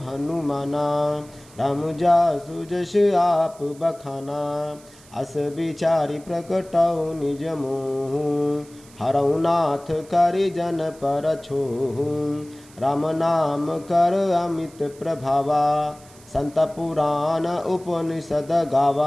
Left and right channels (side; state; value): right; noise; hiss, 24 dB below the sound